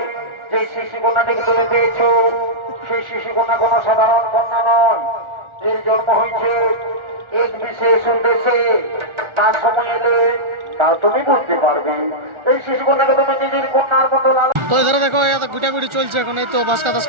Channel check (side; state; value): left; late; 1.4 ms